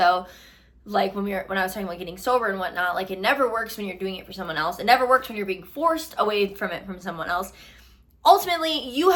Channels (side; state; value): both; identical; correlation 1.00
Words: like when I was talking about getting sober and whatnot. Like, it never works when you're doing it for someone else. It never works when you're being forced away from it from someone else. Ultimately, you